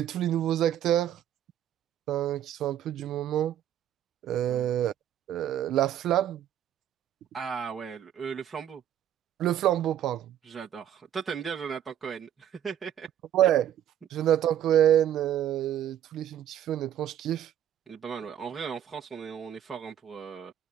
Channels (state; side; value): quieter; left; 10.8 dB